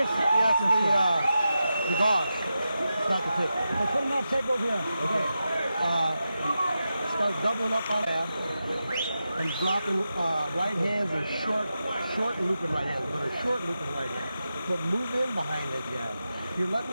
Yes, the gauze. It's not the tape. I'll put them on tape over here. Okay. Start doubling up on that and dropping right hands or short looping right hands, but a short looping right hand. But move in behind the jab. You're letting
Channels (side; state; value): both; inverted; correlation -0.90